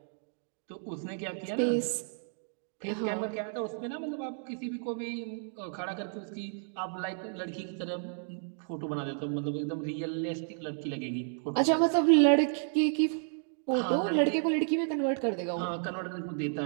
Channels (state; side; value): silent; left; digital silence